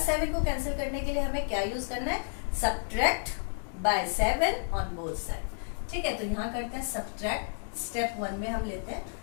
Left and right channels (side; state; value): right; silent; digital silence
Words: को कैंसिल करने के लिए हमें क्या यूज करना है, subtract by 7 on both side. ठीक है, तो यहाँ करते हैं सब्ट्रैक्ट। स्टेप 1 में हम लेते हैं,